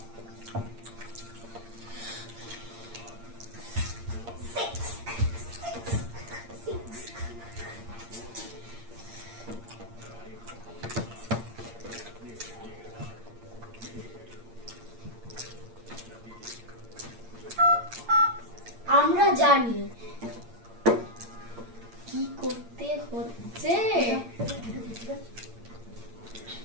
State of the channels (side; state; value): left; late; 8.7 ms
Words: আমরা জানি কি করতে হচ্ছে।